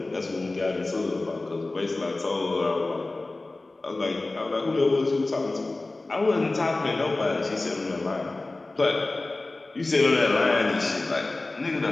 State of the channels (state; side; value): quieter; right; 3.1 dB